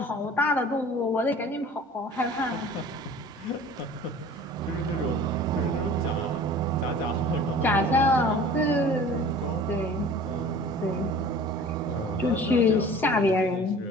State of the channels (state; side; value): normal; both; correlation 0.44